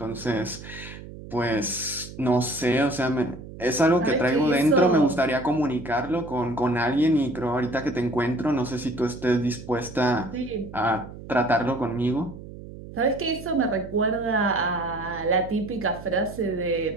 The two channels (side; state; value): right; noise; hum, 14 dB below the sound